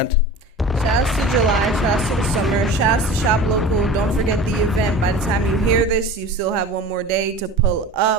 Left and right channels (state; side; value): normal; both; correlation 0.37